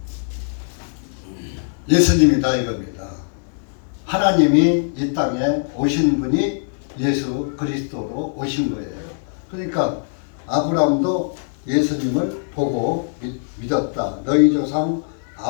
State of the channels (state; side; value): silent; right; digital silence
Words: 예수님이다 이겁니다. 하나님이 이 땅에 오신 분이 예수 그리스도로 오신 거예요. 그러니까 아브라함도 예수님을 보고 믿었다. 너희 조상